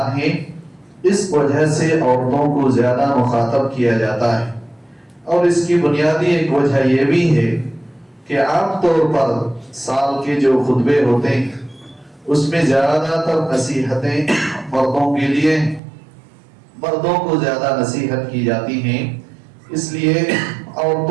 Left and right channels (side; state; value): left; drops out; at 15.8 s